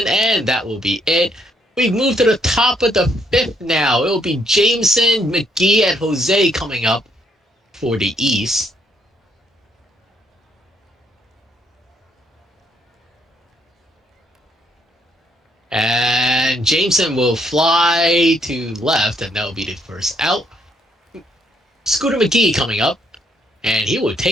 and that will be it. We move to the top of the 5th now. It will be Jameson, McGee, and Jose coming up for the East. And Jameson will fly to left, and that will be the first out. Scooter McGee coming up, and he will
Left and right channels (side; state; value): both; normal; correlation 0.71